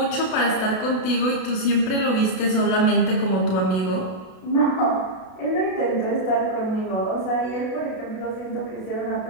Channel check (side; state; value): right; late; 32 ms